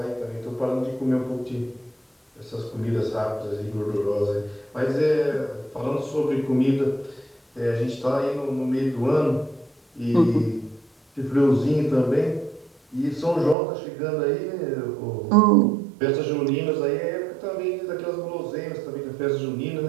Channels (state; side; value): drops out; left; at 13.6 s